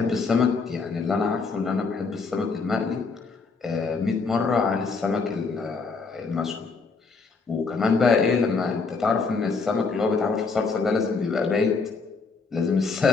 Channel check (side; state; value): right; quieter; 4.6 dB